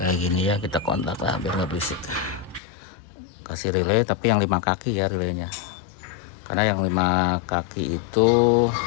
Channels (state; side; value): drops out; right; at 2.6 s